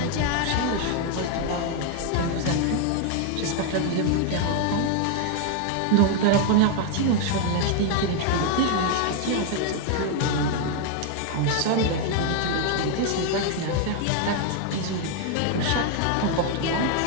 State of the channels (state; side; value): different; both; correlation 0.00